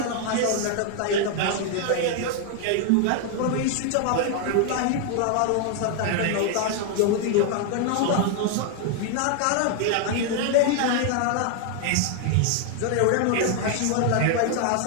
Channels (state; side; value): different; both; correlation 0.00